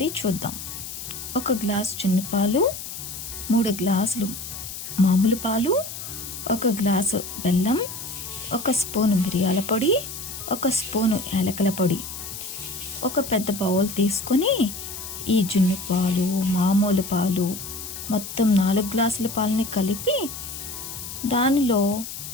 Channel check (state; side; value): noise; left; hiss, 9 dB below the sound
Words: చూద్దాం. 1 గ్లాస్ జున్ను పాలు, 3 గ్లాసులు మామూలు పాలు, 1 గ్లాసు బెల్లం, 1 స్పూను మిరియాల పొడి, 1 స్పూను యాలకుల పొడి. ఒక పెద్ద బౌల్ తీసుకొని ఈ జున్ను పాలు, మామూలు పాలు మొత్తం 4 గ్లాసుల పాలని కలిపి దానిలో